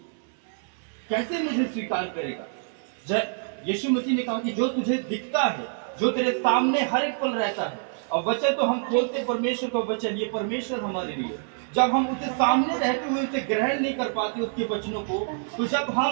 कैसे मुझे स्वीकार करेगा। यीशु मसीह ने कहा कि जो तुझे दिखता है, जो तेरे सामने हर एक पल रहता है, और वचन तो हम खोलते परमेश्वर का वचन, ये परमेश्वर हमारे लिए, जब हम उसके सामने रहते हुए उसे ग्रहण नहीं कर पाते उसके वचनों को, तो जब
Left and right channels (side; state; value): left; silent; digital silence